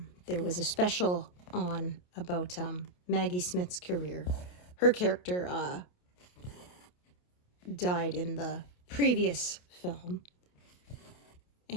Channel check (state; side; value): late; right; 28 ms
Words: there was a special on about Maggie Smith's career. Her character died in the previous film,